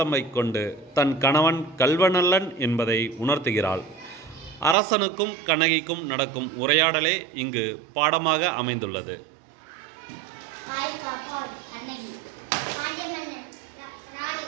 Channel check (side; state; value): left; drops out; at 4.8 s